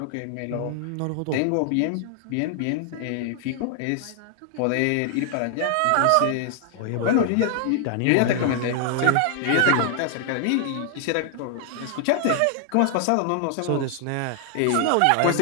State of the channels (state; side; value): different; both; correlation 0.00